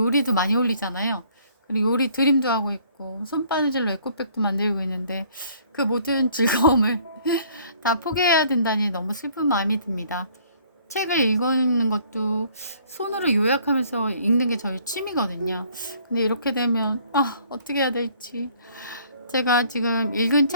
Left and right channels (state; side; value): inverted; both; correlation -0.59